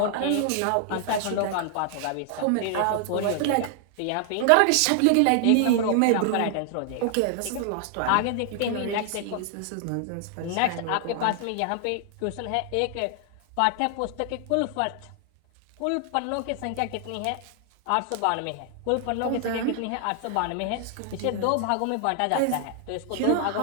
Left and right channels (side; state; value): both; different; correlation 0.00